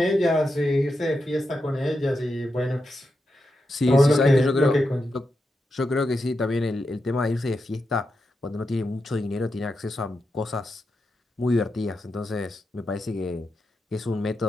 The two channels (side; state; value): both; normal; correlation 0.87